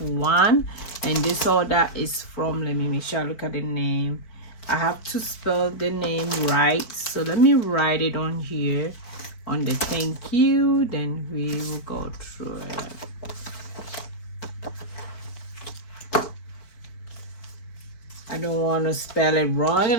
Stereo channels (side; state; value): right; late; 4.5 ms